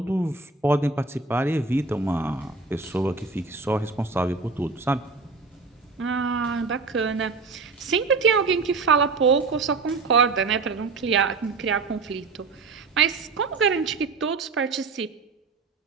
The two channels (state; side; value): quieter; left; 4.2 dB